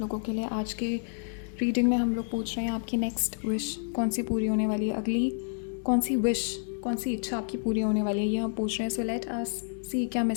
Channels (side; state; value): right; silent; digital silence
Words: लोगों के लिए। आज के रीडिंग में हम लोग पूछ रहे हैं आपकी नेक्स्ट विश कौन सी पूरी होने वाली है, अगली कौन सी विश, कौन सी इच्छा आपकी पूरी होने वाली है, ये हम पूछ रहे हैं। सो लेट अस सी क्या